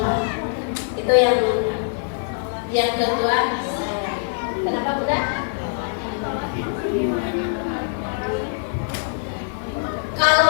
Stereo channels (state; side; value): silent; right; digital silence